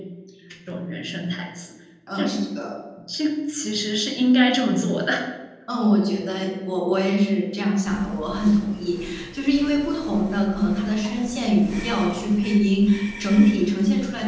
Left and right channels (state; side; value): identical; both; correlation 1.00